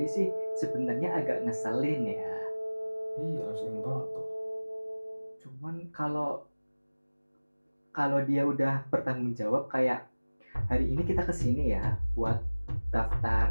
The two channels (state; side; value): inverted; both; correlation -1.00